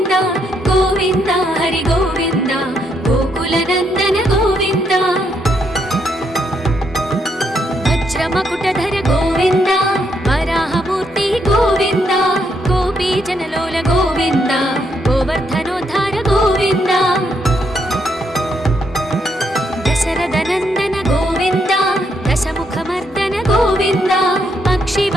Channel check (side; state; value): both; normal; correlation 0.76